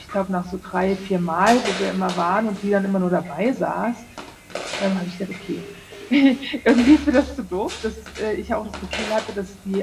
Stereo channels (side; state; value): both; identical; correlation 1.00